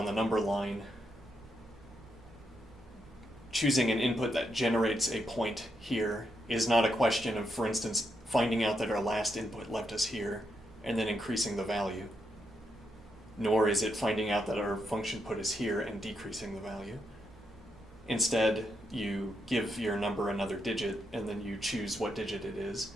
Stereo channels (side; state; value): both; normal; correlation 0.81